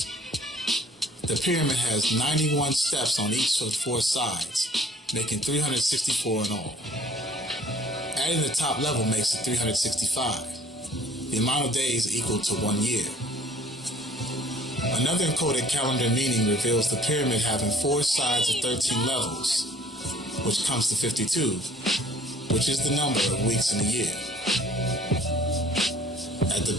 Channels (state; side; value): normal; both; correlation 0.55